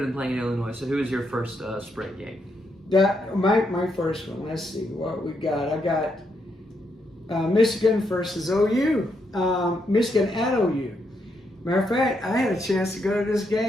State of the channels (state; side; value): normal; both; correlation 0.79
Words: than playing in Illinois. So who is your first spread game? That my first one. Let's see what we got. I got Michigan versus OU. Michigan at OU. Matter of fact, I had a chance to go to this